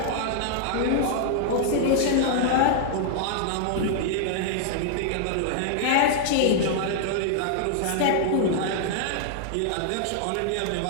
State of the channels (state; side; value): different; both; correlation -0.01